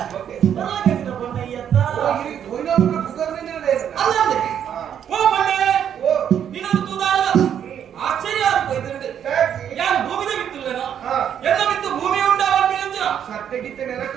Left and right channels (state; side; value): quieter; left; 9.1 dB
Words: ಓಕೆ ಬರಲಾಗಿನ ಬಣ್ಣ ಈ ಅತ್ತ ಓ ಇಲ್ಲಿ ಕೊಯ್ನವರ ಬುಗರ್ನಿಂದ ಇದೆ ಅಲ್ಲಂದೆ ಓ ಬಣ್ಣೆ ಓ ನೀನೊಂದು ತೂದಾಳ ಆಶ್ಚರ್ಯ ಆಗ್ತದೆ ಯಾರು ಭೂಮಿದ ಬಿತ್ತಿಲ್ಲನ ಎಲ್ಲ ಬಿತ್ತು ಭೂಮಿ ಉಂಟಾಗಿ ಅಂಜನ ಸತ್ತೆಗಿತ್ತೆ